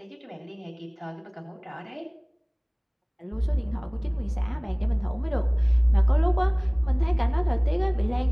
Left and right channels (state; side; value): identical; both; correlation 1.00